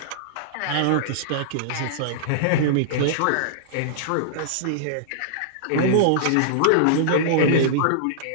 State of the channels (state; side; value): different; both; correlation -0.02